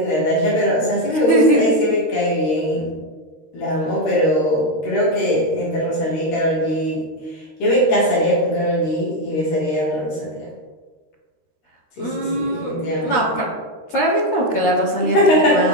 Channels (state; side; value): late; right; 13 ms